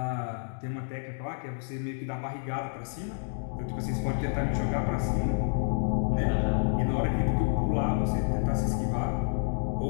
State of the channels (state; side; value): silent; right; digital silence